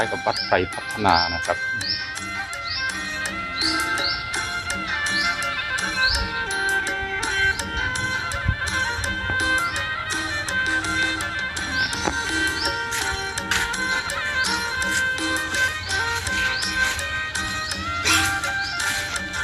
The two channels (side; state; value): both; identical; correlation 1.00